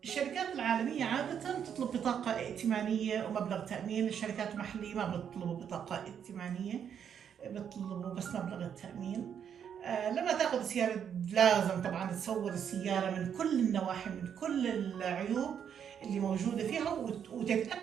الشركات العالميه عاده تطلب بطاقه ائتمانيه ومبلغ تامين. الشركات المحليه ما بيطلبوا بطاقه ائتمانيه، بيطلبوا بس مبلغ التامين. لما تاخذ السيارة لازم طبعا تصور السيارة من كل النواحي، من كل العيوب اللي موجودة فيها،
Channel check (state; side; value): quieter; left; 8.2 dB